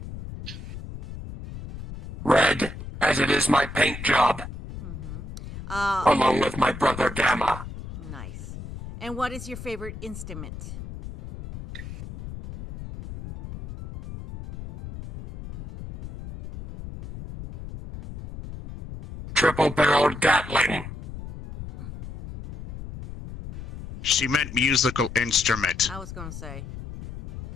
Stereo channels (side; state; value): left; noise; rumble, 11 dB below the sound